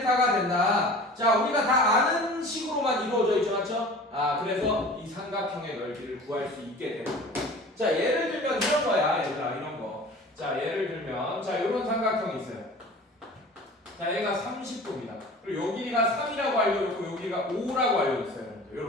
된다. 자, 우리가 다 아는 식으로만 이루어져 있죠, 맞죠? 그래서 이 삼각형의 넓이를 구할 수 있게 되는 거예요. 자, 예를 들면 이런 거야, 얘들아, 이런 거. 자, 예를 들면, 자, 이런 삼각형이 있어요. 자, 얘가 30도입니다. 그리고 여기가 3이라고 알려줬고, 여기가 5라고 알려줬어요.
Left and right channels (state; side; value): normal; both; correlation 0.41